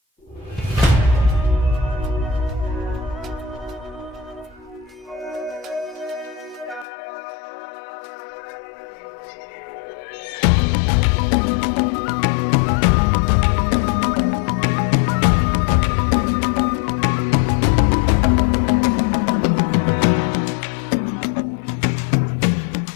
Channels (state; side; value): drops out; right; at 6.9 s